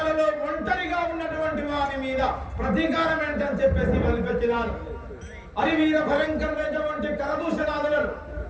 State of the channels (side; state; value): both; identical; correlation 1.00